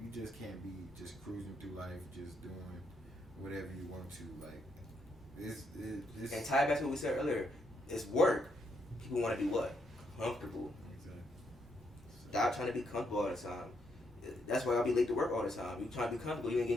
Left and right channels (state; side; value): normal; both; correlation 0.77